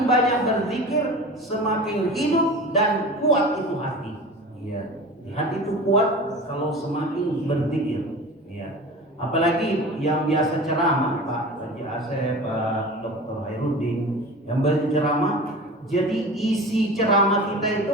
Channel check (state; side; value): normal; both; correlation 0.35